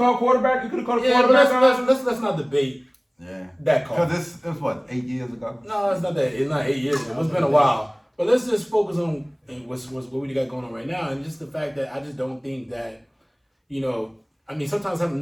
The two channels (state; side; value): identical; both; correlation 1.00